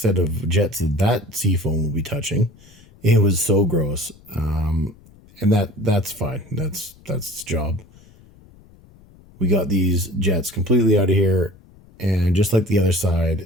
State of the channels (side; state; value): left; noise; rumble, 25 dB below the sound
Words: of jets that Seafoam will be touching. It was so gross, and that's fine. That's its job. We got these jets completely out of here, and just like the other